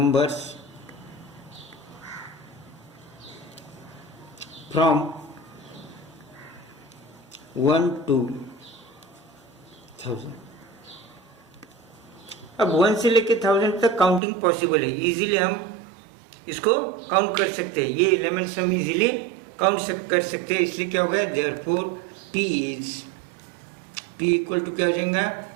from 1 to 1000। अब 1 से लेके 1000 तक काउंटिंग पॉसिबल है, इजीली हम इसको काउंट कर सकते हैं, ये एलिमेंट्स हम इजीली काउंट कर सकते हैं। इसलिए क्या होगा, देयरफॉर P इक्वल टू क्या हो जाएगा,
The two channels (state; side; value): drops out; left; at 14.2 s